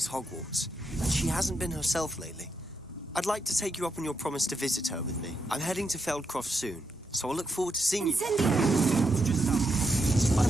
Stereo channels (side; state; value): both; normal; correlation 0.82